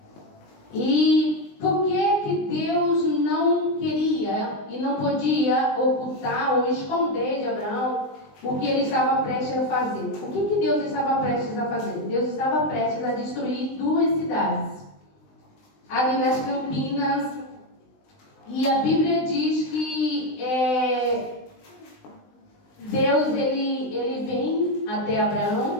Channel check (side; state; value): right; late; 20 ms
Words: E por que Deus não queria e não podia ocultar ou esconder de Abraão o que ele estava prestes a fazer? O que Deus estava prestes a fazer? Deus estava prestes a destruir 2 cidades ali nas Campinas. E a Bíblia diz que Deus ele vem até